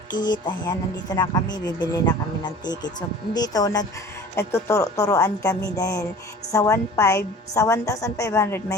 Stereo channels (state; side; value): normal; both; correlation 0.43